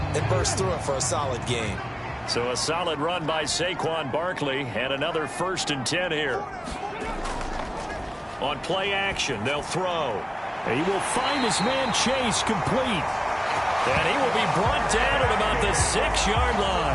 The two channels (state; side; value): identical; both; correlation 1.00